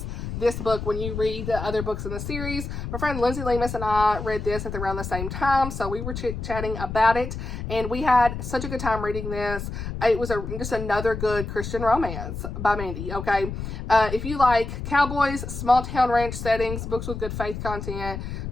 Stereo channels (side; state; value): left; noise; rumble, 6 dB below the sound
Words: this book when you read the other books in the series. My friend Lindsay Lemus and I read this at around the same time, so we were chit-chatting about it, and we had such a good time reading this. It was just another good Christian romance by Mandi, okay? If you like cowboys, small town ranch settings, books with good faith content,